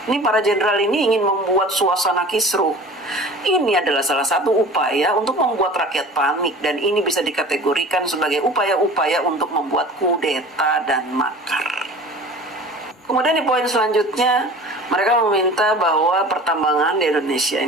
Ini para jenderal ini ingin membuat suasana kisruh. Ini adalah salah satu upaya untuk membuat rakyat panik, dan ini bisa dikategorikan sebagai upaya-upaya untuk membuat kudeta dan makar. Kemudian di poin selanjutnya, mereka meminta bahwa pertambangan di Indonesia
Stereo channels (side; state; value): both; normal; correlation 0.41